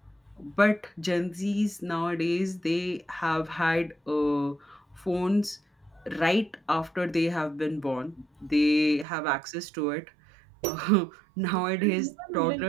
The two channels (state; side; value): drops out; left; at 9.1 s